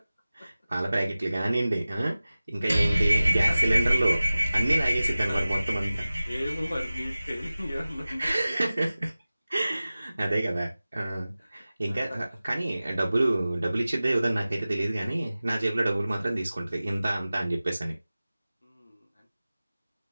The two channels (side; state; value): both; inverted; correlation -0.97